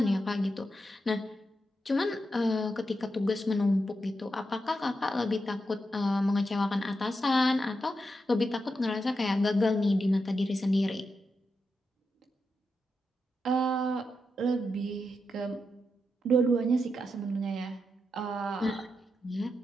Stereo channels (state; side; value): normal; both; correlation 0.86